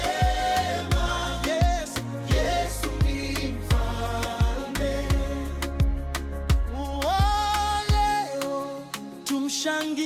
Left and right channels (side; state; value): both; identical; correlation 1.00